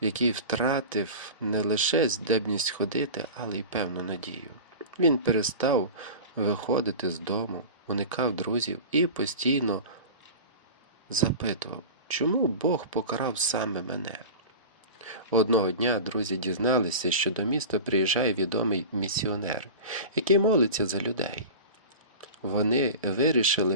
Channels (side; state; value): both; inverted; correlation -0.32